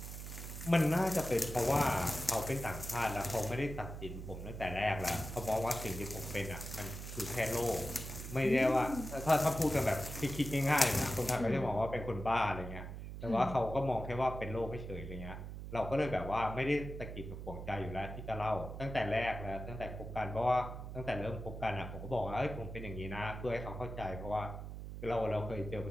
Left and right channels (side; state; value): right; noise; hum, 9 dB below the sound